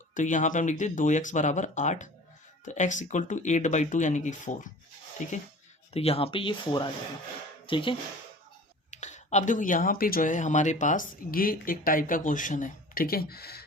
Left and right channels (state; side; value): normal; both; correlation 0.42